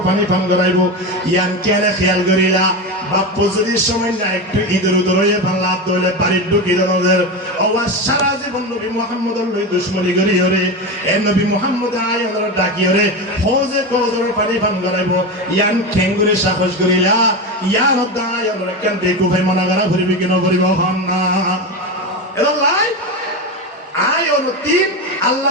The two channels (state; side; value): normal; both; correlation 0.19